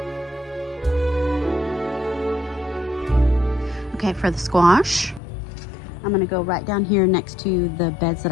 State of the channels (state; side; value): drops out; right; at 5.2 s